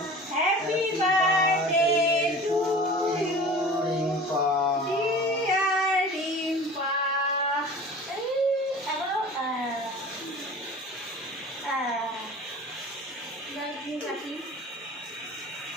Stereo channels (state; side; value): normal; both; correlation 0.40